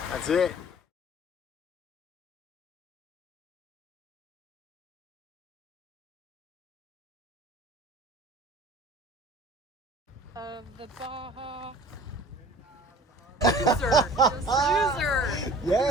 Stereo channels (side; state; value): both; normal; correlation 0.46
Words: that's it. Of the Baja. Loser. Just loser.